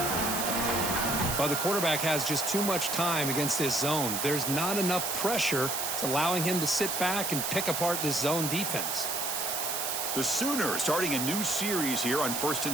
Well, the quarterback has just too much time against this zone. There's not enough pressure. It's allowing him to sit back and pick apart this zone defense. The Sooners starting a new series here on 1st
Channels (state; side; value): noise; right; hiss, 1 dB below the sound